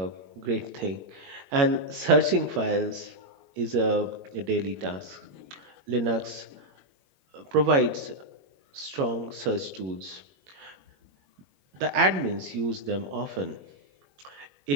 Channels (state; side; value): late; left; 21 ms